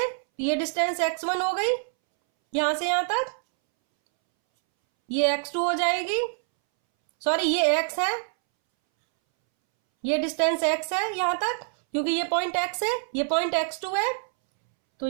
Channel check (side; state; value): left; silent; 61 dB below the other